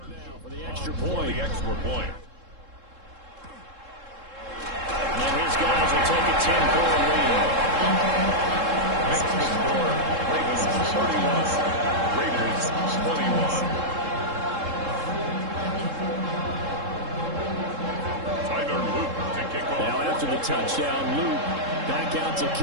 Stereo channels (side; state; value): left; late; 3.7 ms